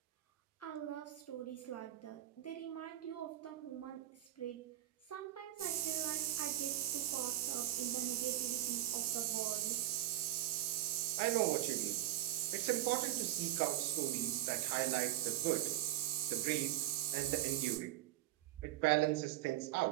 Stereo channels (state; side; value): quieter; left; 14.1 dB